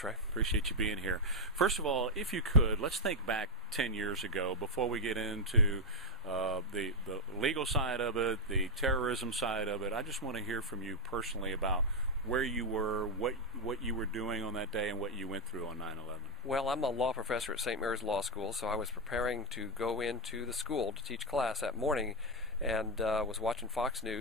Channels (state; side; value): normal; both; correlation 0.03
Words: Appreciate you being here. First of all, if you could, let's think back 10 years ago before we get into the legal side of it, the terrorism side of it. I just want to hear from you personally about where you were, what you were doing on that day, and what you went through on 9/11. Well, I'm a law professor at St. Mary's Law School, so I was preparing to go into the school to teach class that morning, and was watching Fox